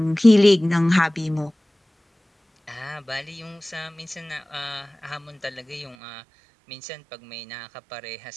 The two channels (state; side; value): drops out; left; at 6.0 s